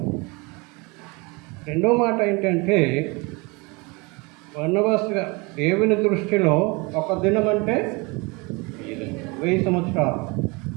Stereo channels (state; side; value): quieter; left; 27.5 dB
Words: రెండో మాట ఏంటంటే బర్నబాస్గా దేవుని దృష్టిలో ఒక దినం అంటే 1000 సంవత్సరాలు.